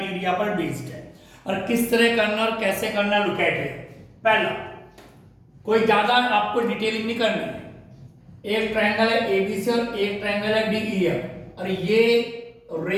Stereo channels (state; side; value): identical; both; correlation 1.00